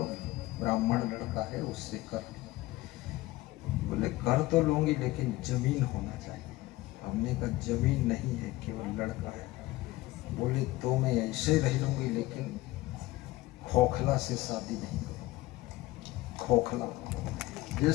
ब्राह्मण लड़का है उससे कर। बोले कर तो लूंगी लेकिन जमीन होना चाहिए। हमने कहा जमीन नहीं है, केवल लड़का है। बोले तो मैं ऐसे रह लूंगी लेकिन खोखला से शादी नहीं करूंगी। खोखला,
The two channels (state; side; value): quieter; right; 18.3 dB